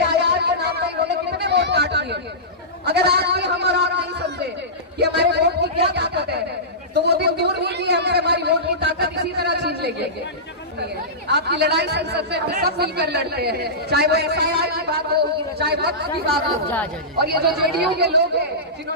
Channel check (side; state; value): both; normal; correlation -0.18